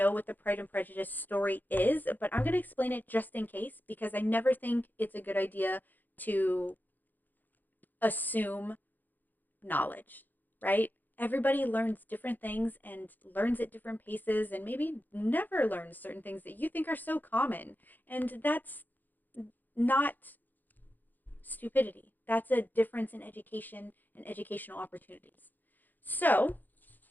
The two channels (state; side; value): late; right; 0.086 ms